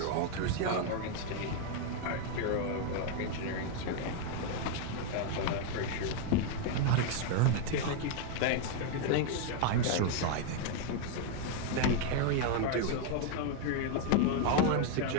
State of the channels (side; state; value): both; different; correlation 0.01